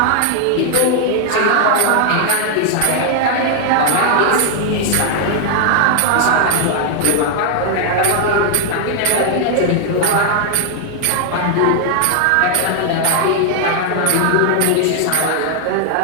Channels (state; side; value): different; both; correlation 0.00